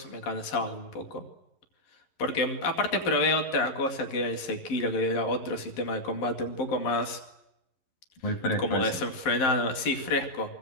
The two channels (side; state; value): right; late; 11 ms